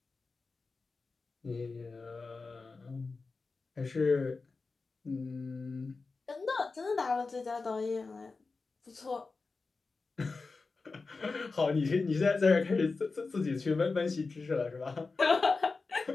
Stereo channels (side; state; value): right; quieter; 4.1 dB